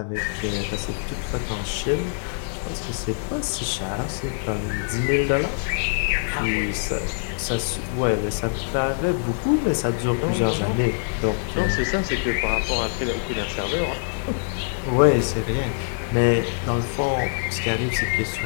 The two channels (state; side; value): silent; right; digital silence